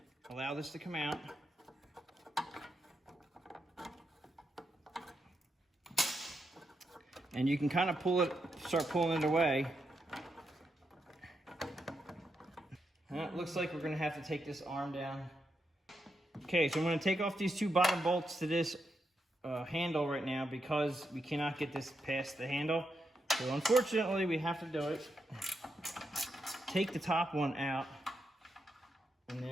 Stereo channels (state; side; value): normal; both; correlation 0.83